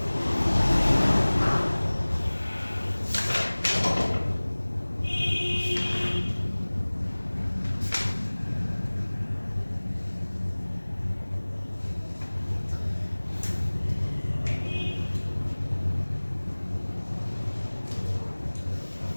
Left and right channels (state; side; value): inverted; both; correlation -1.00